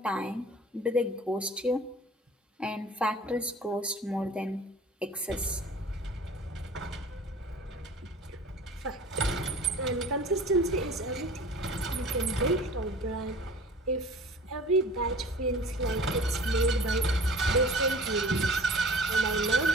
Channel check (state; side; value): normal; both; correlation 0.44